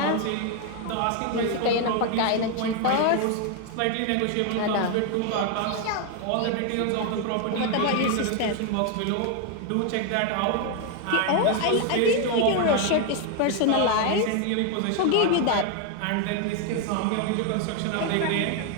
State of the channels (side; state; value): both; different; correlation 0.01